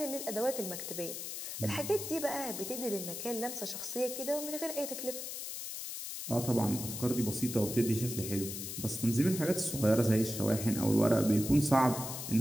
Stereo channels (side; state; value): left; noise; hiss, 7 dB below the sound